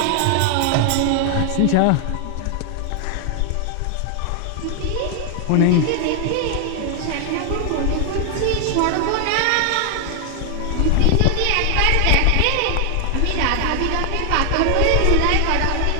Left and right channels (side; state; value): both; different; correlation 0.00